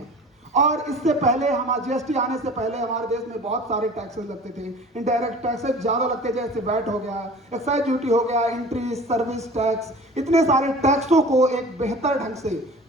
और इससे पहले जीएसटी आने से पहले हमारे देश में बहुत सारे टैक्सेस लगते थे। इनडायरेक्ट टैक्सेस ज्यादा लगते, जैसे वैट हो गया, एक्साइज ड्यूटी हो गया, एंट्री सर्विस टैक्स, इतने सारे टैक्सों को एक बेहतर ढंग से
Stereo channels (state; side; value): normal; both; correlation 0.42